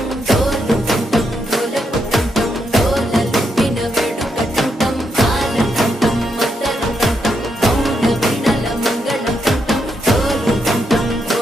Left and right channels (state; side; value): normal; both; correlation 0.80